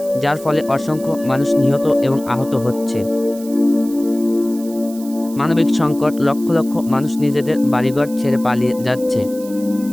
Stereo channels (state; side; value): noise; right; hiss, 18 dB below the sound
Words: যার ফলে অসংখ্য মানুষ নিহত এবং আহত হচ্ছে। মানবিক সংকট, লক্ষ লক্ষ মানুষ নিজেদের বাড়িঘর ছেড়ে পালিয়ে যাচ্ছে।